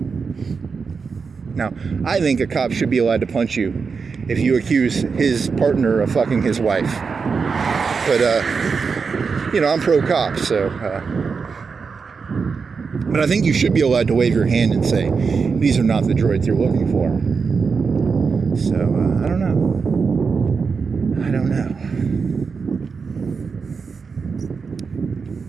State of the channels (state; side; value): quieter; left; 5.2 dB